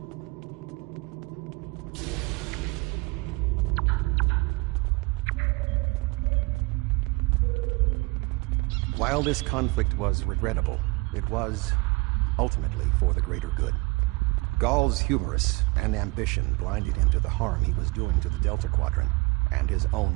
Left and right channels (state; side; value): quieter; left; 25.9 dB